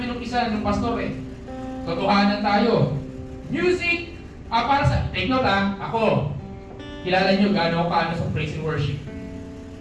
ng isa, ng pastor eh. Totohanan tayo. Music, para sa, take note ako, kilala nyo gaano ako kaano sa praise and worship.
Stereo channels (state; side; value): identical; both; correlation 1.00